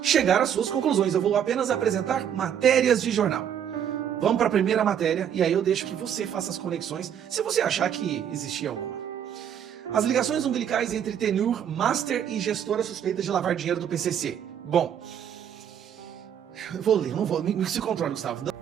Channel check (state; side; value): quieter; left; 9.0 dB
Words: chegar às suas conclusões. Eu vou apenas apresentar matérias de jornal. Vamos para a primeira matéria, e aí eu deixo que você faça as conexões, se você achar que existia alguma. As ligações umbilicais entre Tenur, Master e gestora suspeita de lavar dinheiro do PCC. Bom, eu vou ler, não vou, me se controle, Gustavo.